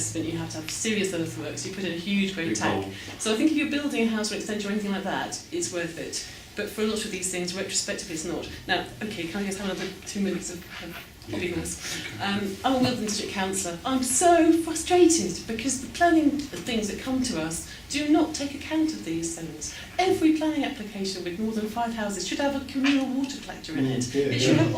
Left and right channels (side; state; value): both; identical; correlation 1.00